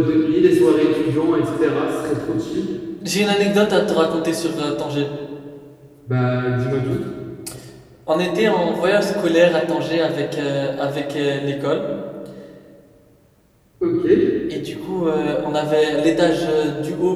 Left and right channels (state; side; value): identical; both; correlation 1.00